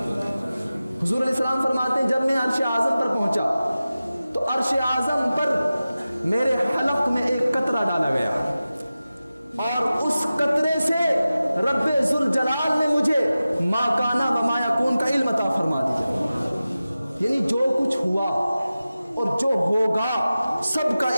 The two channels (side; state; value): both; inverted; correlation -0.95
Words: حضور علیہ السلام فرماتے ہیں جب میں عرش اعظم پر پہنچا تو عرش اعظم پر میرے حلق میں ایک قطرہ ڈالا گیا، اور اس قطرے سے رب ذوالجلال نے مجھے ما کانا و ما یکون کا علم عطا فرما دیا، یعنی جو کچھ ہوا اور جو ہوگا سب کا